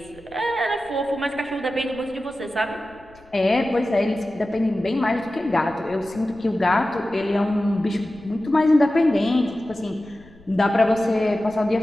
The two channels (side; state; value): left; noise; rumble, 26 dB below the sound